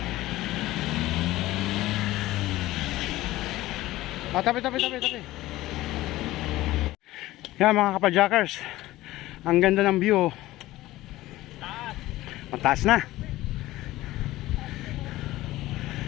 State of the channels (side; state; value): right; quieter; 16.9 dB